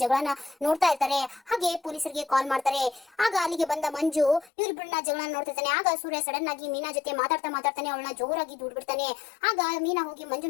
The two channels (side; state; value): right; drops out; at 4.5 s